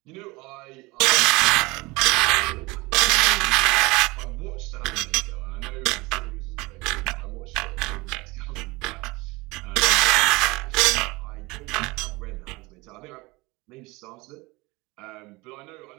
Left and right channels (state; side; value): quieter; left; 23.4 dB